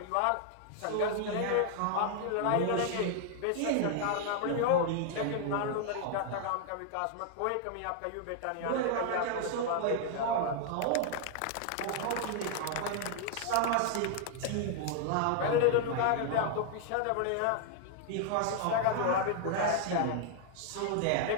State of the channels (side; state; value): both; different; correlation 0.00